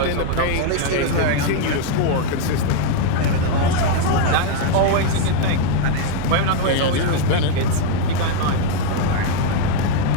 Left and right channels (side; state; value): both; different; correlation 0.01